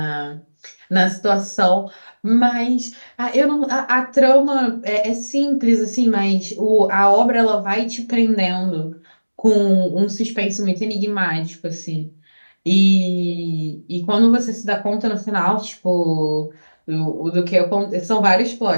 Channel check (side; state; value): both; inverted; correlation -1.00